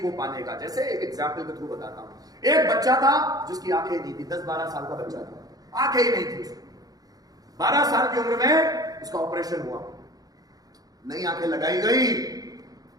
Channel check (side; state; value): left; late; 0.18 ms